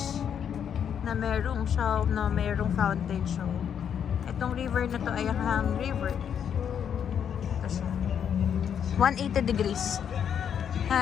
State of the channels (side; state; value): right; quieter; 8.3 dB